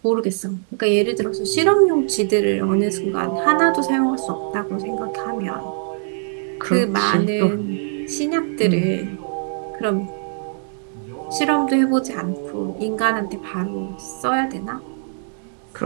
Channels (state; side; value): silent; left; digital silence